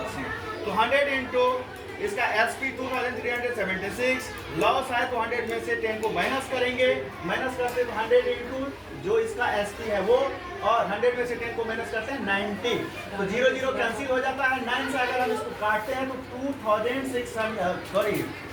तो 100 इंटू इसका एसपी 2376 लॉस है, तो 100 में से 10 को माइनस करेंगे, माइनस करते हैं 100 इंटू जो इसका एसपी है वो, और 100 में से 10 को माइनस करते हैं 90। तो 0 0 कैंसिल हो जाता है। 9 से अगर हम इसको काटते हैं तो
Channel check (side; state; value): both; identical; correlation 1.00